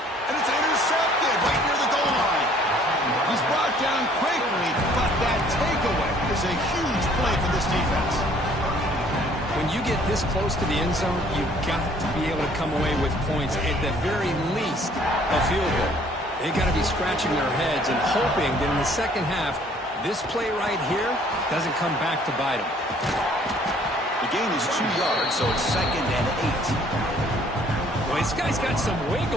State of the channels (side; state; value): both; normal; correlation 0.58